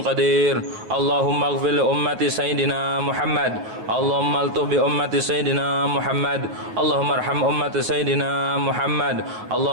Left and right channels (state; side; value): late; left; 9.2 ms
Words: قدير اللهم اغفر لأمة سيدنا محمد اللهم الطف بأمة سيدنا محمد اللهم ارحم أمة سيدنا محمد